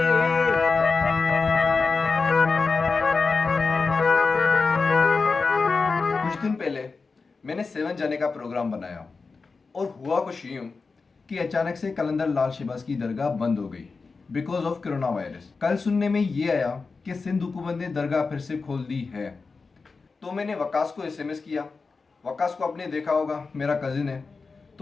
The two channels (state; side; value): quieter; right; 4.4 dB